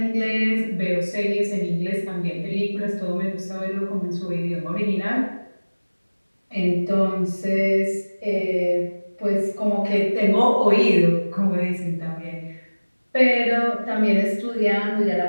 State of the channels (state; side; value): inverted; both; correlation -1.00